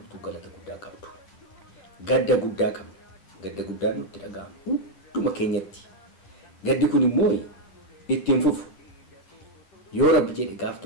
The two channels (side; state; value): right; late; 10 ms